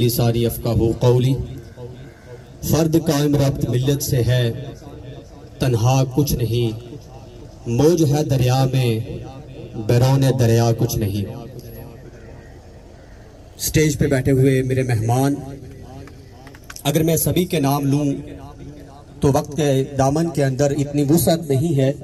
यफ़क़हू क़ौली। फर्द कायम रब्त मिल्लत से है, तन्हा कुछ नहीं, मौज है दरिया में, बैरोन दरिया कुछ नहीं। स्टेज पे बैठे हुए मेरे मेहमान, अगर मैं सभी के नाम लूं तो वक्त के दामन के अंदर इतनी वुसअत नहीं है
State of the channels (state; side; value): identical; both; correlation 1.00